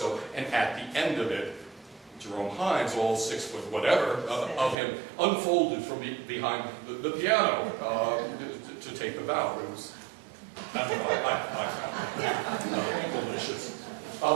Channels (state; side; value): drops out; left; at 4.8 s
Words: And at the end of it, Jerome Hines, all 6 foot whatever of him, unfolded from behind the piano to take the bow. It was, I found delicious.